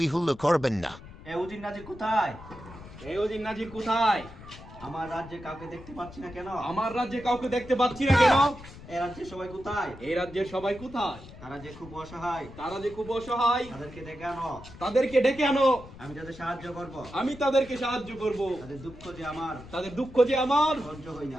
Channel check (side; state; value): left; noise; rumble, 17 dB below the sound